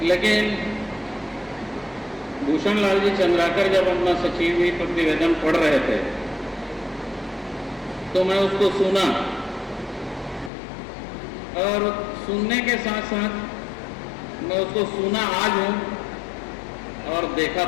लेकिन भूषण लाल जी चंद्राकर जब अपना सचिव प्रतिवेदन पढ़ रहे थे तो मैं उसको सुना, और सुनने के साथ साथ मैं उसको सुना आज हूँ और देखा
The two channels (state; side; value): drops out; right; at 10.5 s